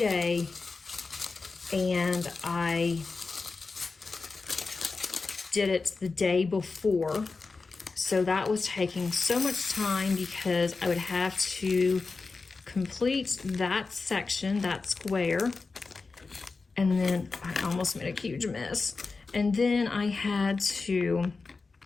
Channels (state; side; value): quieter; right; 4.1 dB